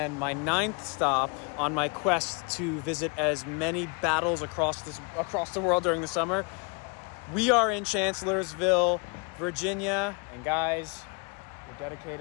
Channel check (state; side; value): quieter; right; 32.9 dB